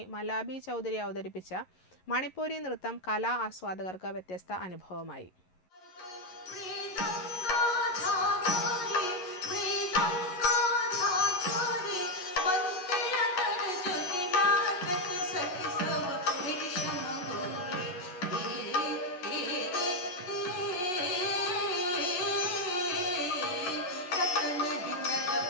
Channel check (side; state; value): right; late; 11 ms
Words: മലാബി ചൗധരി അവതരിപ്പിച്ച മണിപ്പൂരി നൃത്തം കലാ ആസ്വാദകർക്ക് വ്യത്യസ്ത അനുഭവമായി.